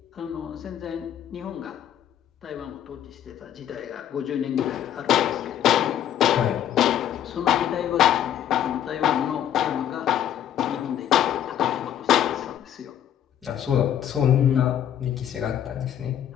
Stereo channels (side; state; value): right; quieter; 10.6 dB